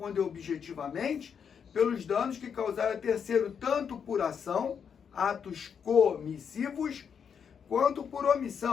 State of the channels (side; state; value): right; quieter; 7.1 dB